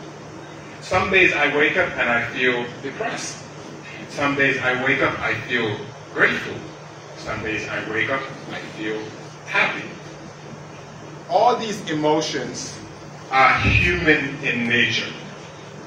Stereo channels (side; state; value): both; identical; correlation 1.00